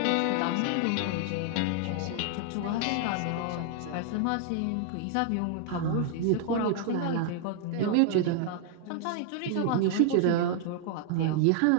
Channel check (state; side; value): different; both; correlation 0.00